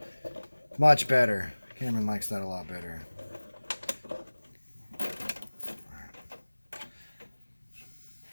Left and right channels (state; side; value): inverted; both; correlation -1.00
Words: Much better. Cameron likes that a lot better.